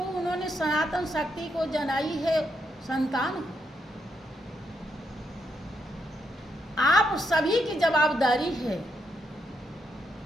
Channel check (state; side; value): normal; both; correlation 0.80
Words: उन्होंने सनातन शक्ति को जनाई है संतान हो। आप सभी की जवाबदारी है,